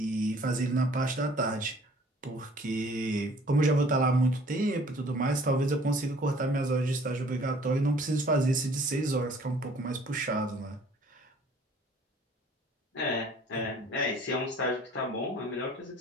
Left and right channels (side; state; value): both; normal; correlation 0.54